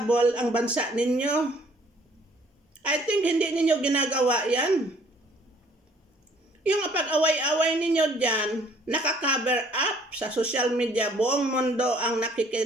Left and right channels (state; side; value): normal; both; correlation 0.59